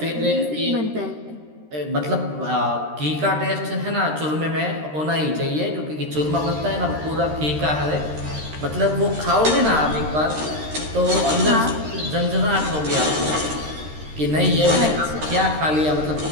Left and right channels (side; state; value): left; late; 13 ms